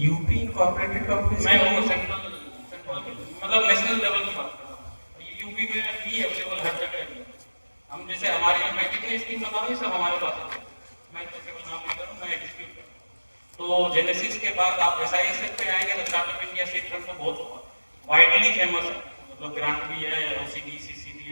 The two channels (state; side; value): inverted; both; correlation -1.00